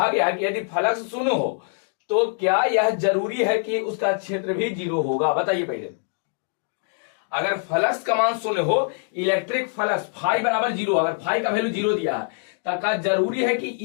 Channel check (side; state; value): right; silent; 63 dB below the other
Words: गया है कि यदि फ्लक्स शून्य हो तो क्या यह जरूरी है कि उसका क्षेत्र भी 0 होगा? बताइए पहले। अगर फ्लक्स का मान शून्य हो, इलेक्ट्रिक फ्लक्स फाई बराबर 0, अगर फाई का वैल्यू 0 दिया है तो क्या जरूरी है कि